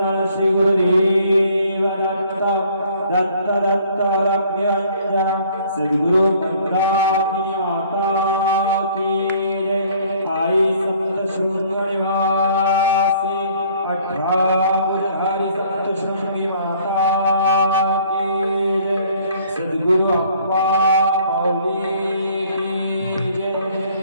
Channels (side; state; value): both; inverted; correlation -0.58